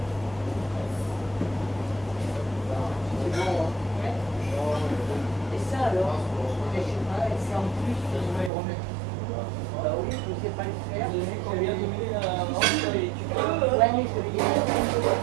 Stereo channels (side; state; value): left; drops out; at 8.5 s